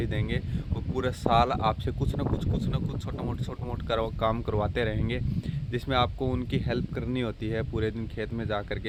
देंगे, और पूरे साल आपसे कुछ ना कुछ छोटा मोट काम करवाते रहेंगे, जिसमें आपको उनकी हेल्प करनी होती है पूरे दिन खेत में जा कर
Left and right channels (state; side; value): identical; both; correlation 1.00